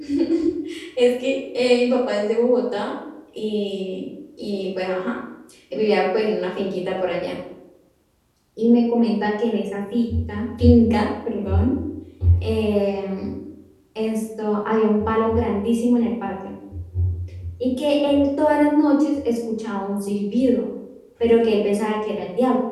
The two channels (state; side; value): identical; both; correlation 1.00